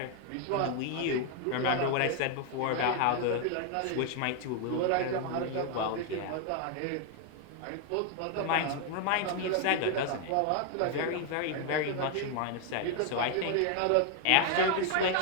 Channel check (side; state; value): both; different; correlation 0.01